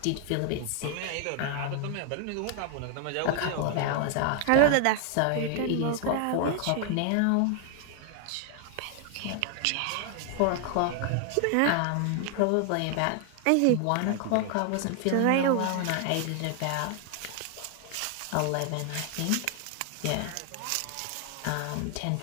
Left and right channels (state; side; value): different; both; correlation 0.00